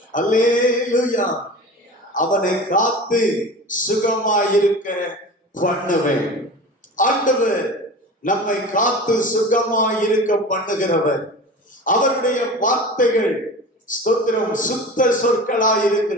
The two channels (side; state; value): both; normal; correlation 0.34